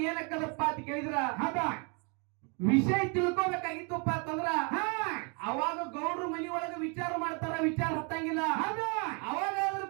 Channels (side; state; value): left; quieter; 34.6 dB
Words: ಏನಕ್ಕದಪ್ಪ ಅಂತ ಕೇಳಿದ್ರ ಹೌದಾ ವಿಷಯ ತಿಳ್ಕೊಬೇಕಾಗಿತ್ತಪ್ಪ ಅಂತಂದ್ರ ಅವಾಗ ಗೌಡ್ರು ಮನಿ ಒಳಗ ವಿಚಾರ ಮಾಡ್ತಾರ. ವಿಚಾರ ಹತ್ತಂಗಿಲ್ಲ. ಅವಾಗಾದ್ರೂ